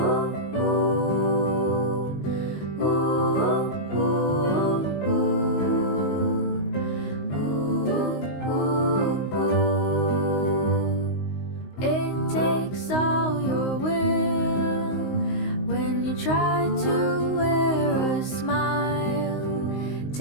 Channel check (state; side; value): late; right; 19 ms